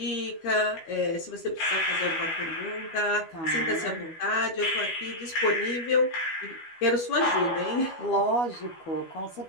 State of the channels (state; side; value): late; right; 12 ms